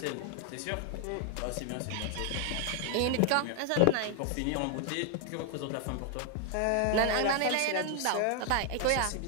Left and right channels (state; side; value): different; both; correlation 0.00